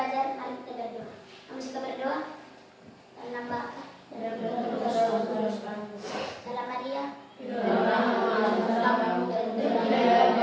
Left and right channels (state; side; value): identical; both; correlation 1.00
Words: mari kita berdoa. Kamu suka berdoa? Dalam Bapa, dalam Maria,